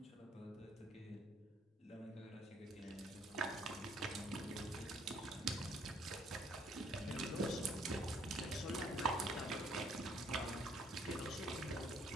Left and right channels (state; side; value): normal; both; correlation 0.64